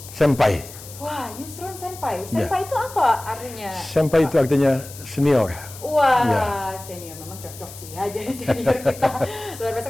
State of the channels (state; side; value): noise; left; hiss, 16 dB below the sound